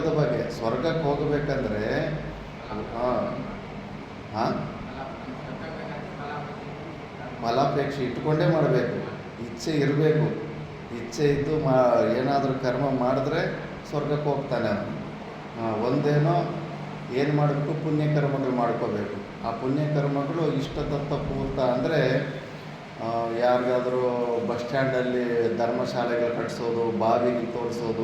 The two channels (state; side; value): identical; both; correlation 1.00